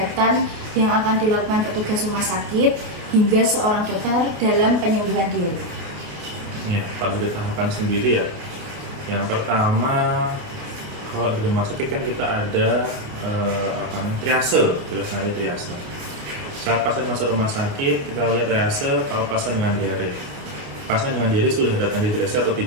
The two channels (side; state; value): left; late; 28 ms